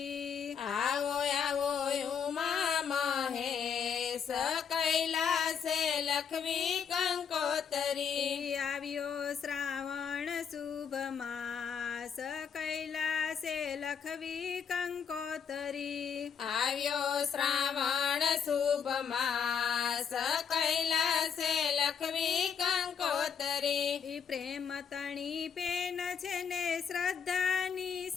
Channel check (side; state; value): right; quieter; 7.1 dB